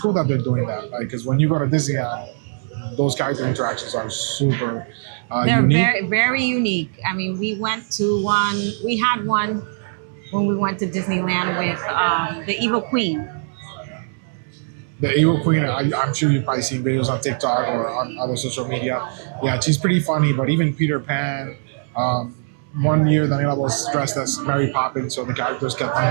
that they're doing that. Because when you go to Disneyland, those character interactions are super They're unique. very, very unique. I mean, we had one when we went to Disneyland with the Evil Queen. The Evil Queen, I'm sure you've probably seen videos on TikTok or on other social media. Yeah, she's pretty funny, but even Peter Pan, one year Daniela was dressed as Mary Poppins, so the characters kept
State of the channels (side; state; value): left; silent; 65 dB below the other